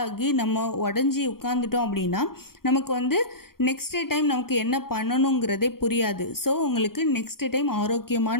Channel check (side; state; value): right; late; 0.93 ms